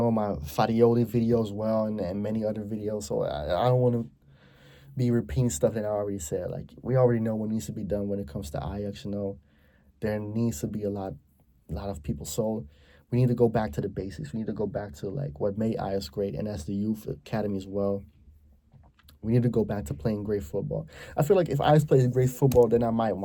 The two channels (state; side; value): identical; both; correlation 1.00